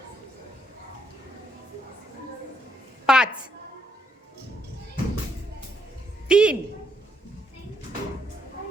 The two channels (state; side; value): normal; both; correlation 0.75